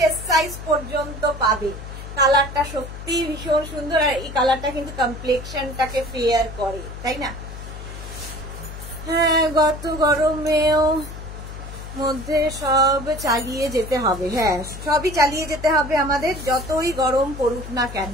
সাইজ পর্যন্ত পাবে। কালারটা সত্যি ভীষণ সুন্দর, আর এই কালারটা কিন্তু কমপ্লেক্সনটাকে ফেয়ার করে, তাই না? হ্যাঁ, গত গরমেও মধ্যে সব চালিয়ে যেতে হবে। হ্যাঁ, সবই চালিয়ে যেতে হবে আমাদের, যতই গরম পড়ুক না কেন।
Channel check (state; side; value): noise; left; hum, 11 dB below the sound